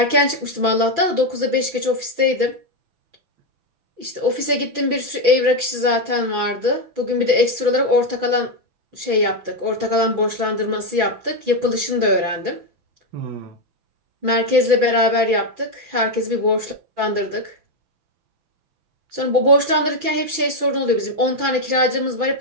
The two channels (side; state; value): left; late; 6.0 ms